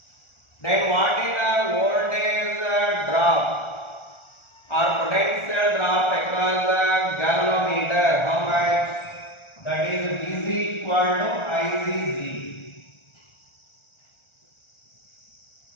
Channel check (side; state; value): right; late; 1.4 ms